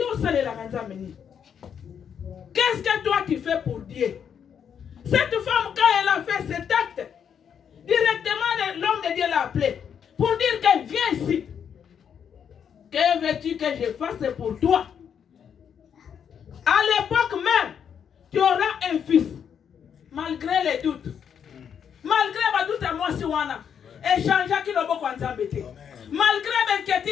qu'est-ce que toi tu fais pour Dieu? Cette femme, quand elle a fait cet acte, directement l'homme de Dieu l'a appelé pour dire qu'elle vient ici. Que veux-tu que je fasse pour toi? À l'époque même, tu auras un fils, malgré les doutes. Malgré les doutes à moi, si on a échangé qui le bon embêté. Malgré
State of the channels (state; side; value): quieter; right; 7.9 dB